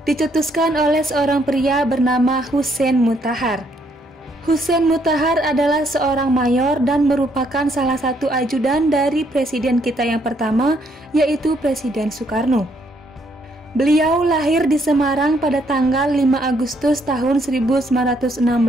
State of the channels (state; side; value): normal; both; correlation 0.70